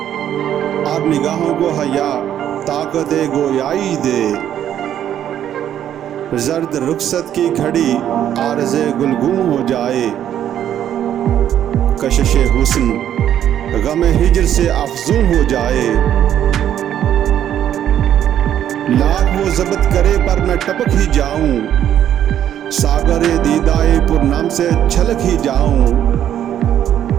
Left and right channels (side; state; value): left; quieter; 10.5 dB